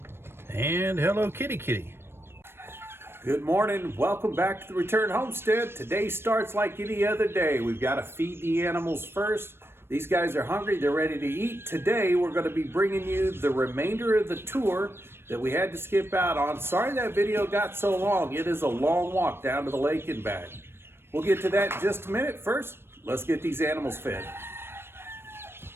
And hello, kitty kitty. Good morning. Welcome back to the Return Homestead. Today starts like any other day. We've got to feed the animals first. These guys are hungry. They're ready to eat. Today, we're going to be bringing you the remainder of the tour that we had to skip out on. Sorry that video got so long. It is a long walk down to the lake and back. We'll get to that in just a minute. First, let's get these animals fed.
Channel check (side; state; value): left; late; 0.12 ms